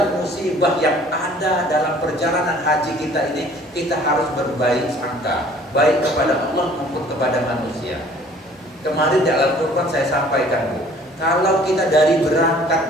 musibah yang ada dalam perjalanan haji kita ini, kita harus berbaik sangka, baik kepada Allah maupun kepada manusia. Kemarin di Al-Quran saya sampaikan Bu, kalau kita dari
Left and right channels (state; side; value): normal; both; correlation 0.53